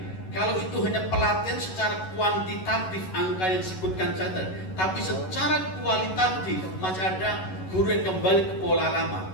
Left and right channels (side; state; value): right; late; 11 ms